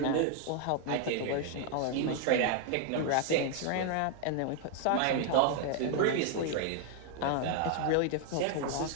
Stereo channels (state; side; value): different; both; correlation 0.00